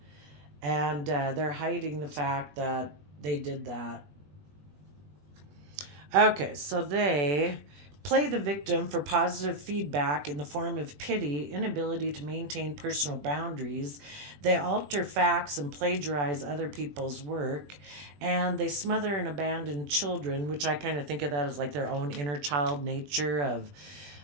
and they're hiding the fact that they did that. Okay, so they play the victim for positive feedback in the form of pity, inability to maintain personal boundaries. They alter facts and plagiarize other people's work. And they smother and abandon children, which I kind of think of that as like their own inner child nature of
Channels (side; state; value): left; late; 21 ms